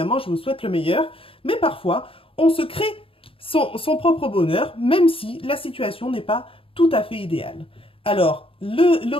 je vous souhaite le meilleur, mais parfois, on se crée son propre bonheur, même si la situation n'est pas tout à fait idéale. Alors, le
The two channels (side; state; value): right; late; 0.27 ms